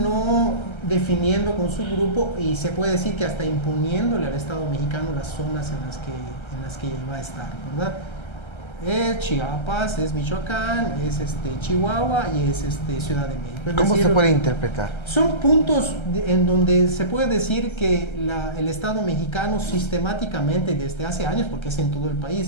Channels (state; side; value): late; right; 1.3 ms